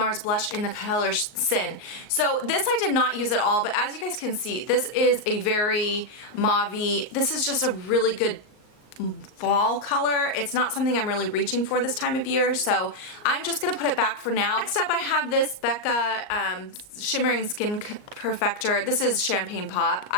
blush in the color Sin. So this I did not use at all, but as you guys can see, this is a very mauve-y. This is just a really good fall color. It's not something I'm really reaching for this time of year, so I'm just gonna put it back for now. Next up I have this Becca Shimmering Skin Perfector. This is Champagne Pop.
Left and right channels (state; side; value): late; right; 38 ms